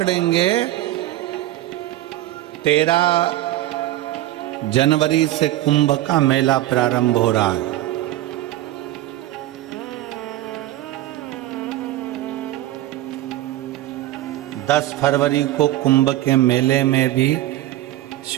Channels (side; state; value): left; quieter; 15.0 dB